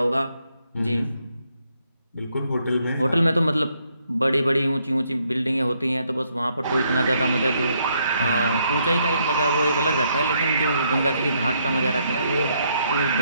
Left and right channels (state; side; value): inverted; both; correlation -0.73